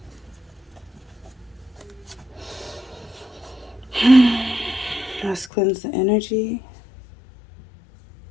Let's cleanse the energy.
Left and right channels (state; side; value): drops out; right; at 5.5 s